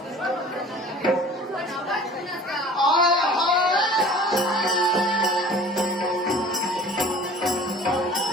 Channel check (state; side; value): normal; both; correlation 0.45